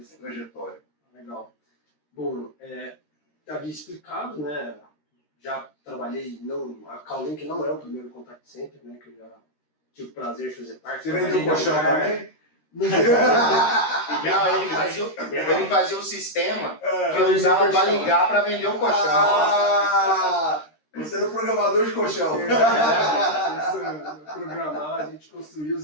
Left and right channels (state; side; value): late; right; 13 ms